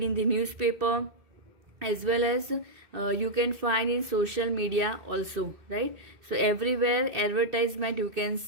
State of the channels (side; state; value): left; late; 2.6 ms